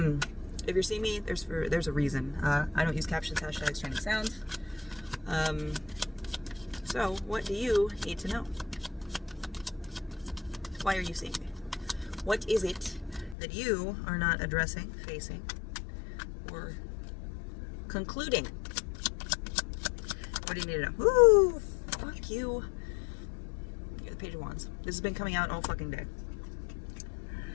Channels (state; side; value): drops out; right; at 13.4 s